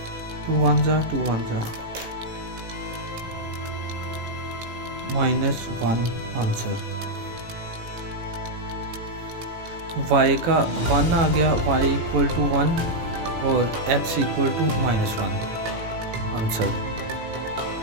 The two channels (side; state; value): left; late; 18 ms